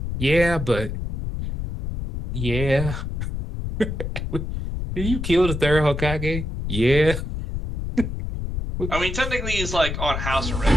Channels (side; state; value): left; noise; rumble, 4 dB below the sound